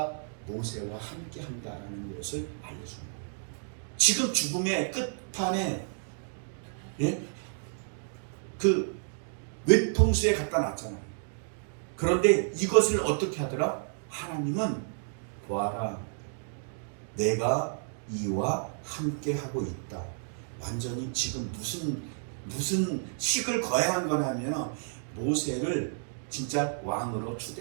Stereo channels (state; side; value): silent; left; digital silence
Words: 모세와 함께 한다라는 것을 알려주는 거예요. 지금 죽음의 끝판에 그 외통수에 갖다 놨잖아요. 그런데 이것을 어떻게 하더라? 하나님은 보아라, 내가 이와 함께 하고 있다. 완전히 지금 무슨 식을 거행한 거냐면 모세를 진짜 왕으로